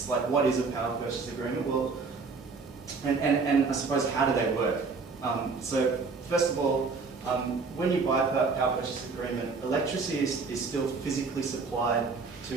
like what is a power purchase agreement? Well, and I suppose how do they work? So first of all, when you buy a power purchase agreement, electricity is still physically supplied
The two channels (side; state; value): left; quieter; 4.5 dB